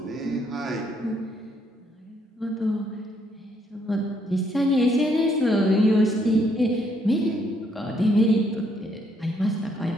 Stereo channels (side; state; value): both; normal; correlation 0.71